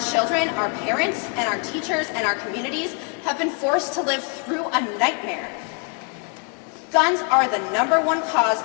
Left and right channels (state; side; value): quieter; right; 37.3 dB